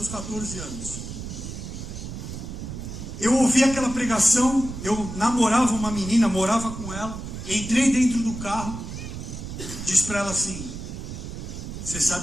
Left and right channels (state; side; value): noise; right; rumble, 8 dB below the sound